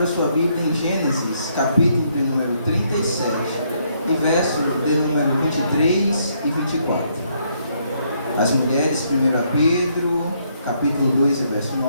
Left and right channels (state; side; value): inverted; both; correlation -0.72